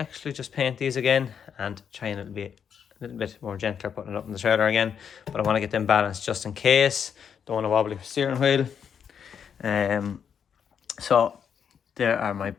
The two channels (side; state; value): right; quieter; 7.6 dB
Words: just paint these again and try and be a little bit more gentler putting it up in the trailer again. But I want to get them balanced just in case. Don't want a wobbly steering wheel. So there are my